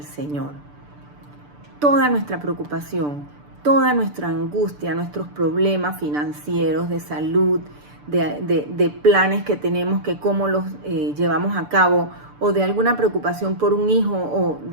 Señor. Toda nuestra preocupación, toda nuestra angustia, nuestros problemas financieros, de salud, de planes que tenemos, que cómo los llevamos a cabo, o de alguna preocupación por un hijo, o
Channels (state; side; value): late; left; 6.8 ms